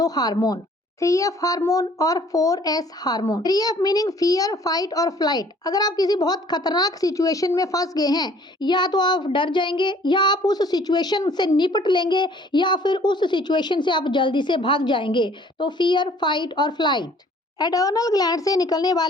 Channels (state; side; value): normal; both; correlation 0.56